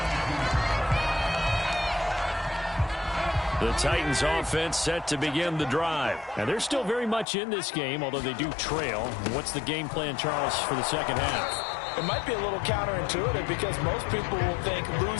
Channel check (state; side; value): drops out; right; at 7.2 s